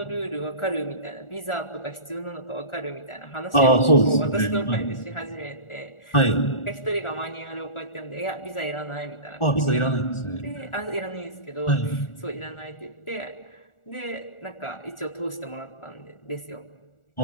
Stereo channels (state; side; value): late; right; 1.4 ms